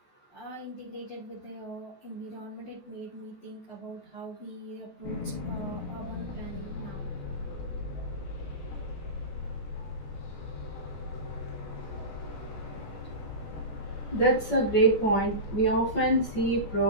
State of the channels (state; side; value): late; right; 14 ms